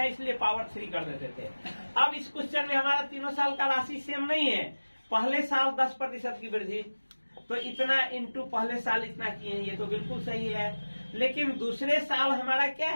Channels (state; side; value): inverted; both; correlation -1.00